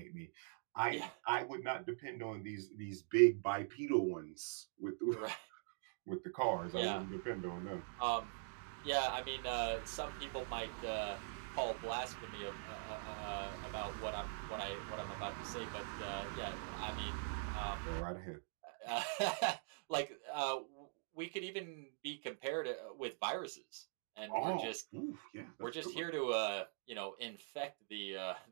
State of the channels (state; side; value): silent; left; digital silence